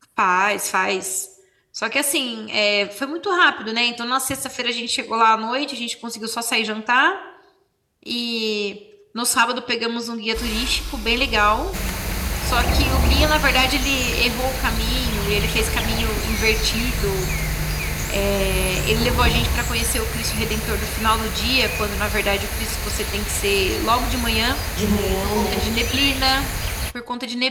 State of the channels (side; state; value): both; identical; correlation 1.00